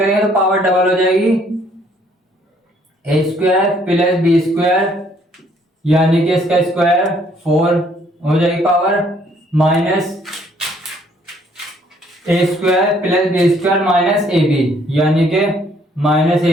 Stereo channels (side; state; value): both; normal; correlation 0.64